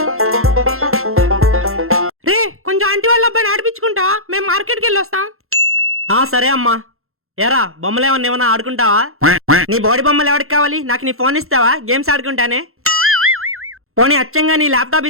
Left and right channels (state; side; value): late; left; 0.62 ms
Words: రే కొంచెం ఆంటీ వాళ్ళ అబ్బాయిని ఆడిపించుకుంటా, మేము మార్కెట్కి వెళ్ళి వస్తాం. సరే అమ్మా. ఏరా బొమ్మలు ఏమన్నా ఆడుకుంటావా? నీ బాడీ బొమ్మలు ఎవరికి కావాలి? నాకు నీ ఫోన్ ఇస్తావా? గేమ్స్ ఆడుకుంటానే. పోనీ అచ్చంగా నీ ల్యాప్టాప్